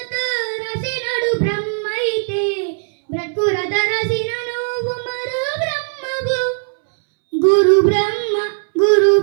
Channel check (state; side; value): silent; left; 67 dB below the other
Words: రసినడు బ్రహ్మ అయితే బ్రతుకు రథ రసిన నువ్వు మరో బ్రహ్మవు గురు బ్రహ్మ గురు